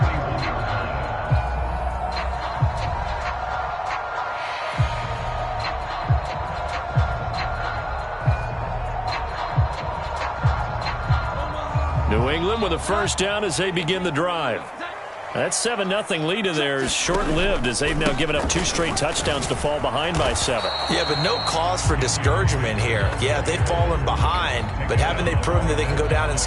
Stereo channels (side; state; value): both; identical; correlation 1.00